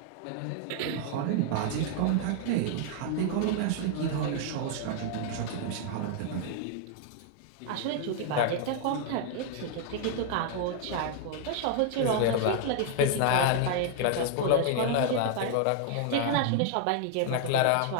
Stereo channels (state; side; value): different; both; correlation 0.00